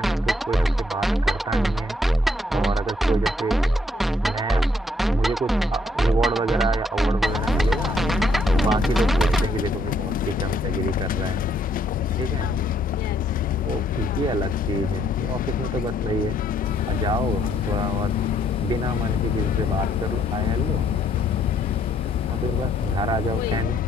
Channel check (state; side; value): normal; both; correlation 0.70